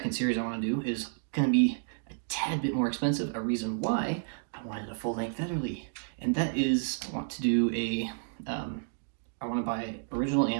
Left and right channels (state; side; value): silent; left; digital silence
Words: series I want to do is going to be a tad bit more expensive, a reason why I wanted a full-length Vetterli, and that is I want to do I want to buy original